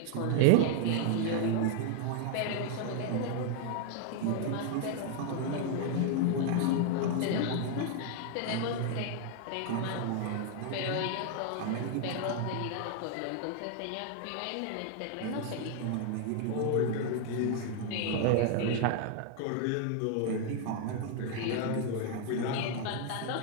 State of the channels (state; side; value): different; both; correlation 0.00